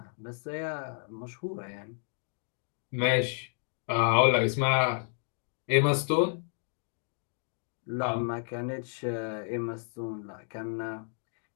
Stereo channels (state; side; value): silent; right; 57 dB below the other